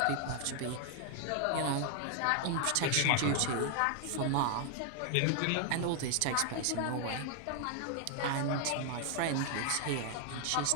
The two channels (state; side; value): different; both; correlation 0.00